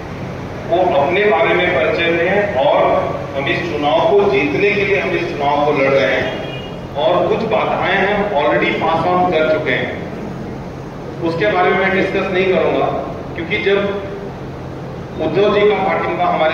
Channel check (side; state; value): both; identical; correlation 1.00